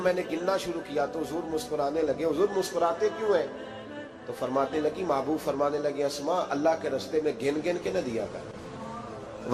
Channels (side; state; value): both; identical; correlation 1.00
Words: نے گننا شروع کیا تو حضور مسکرانے لگے. حضور مسکراتے کیوں ہیں؟ تو فرمانے لگی، محبوب فرمانے لگے اسماء اللہ کے رستے میں گن گن کے نہ دیا کر،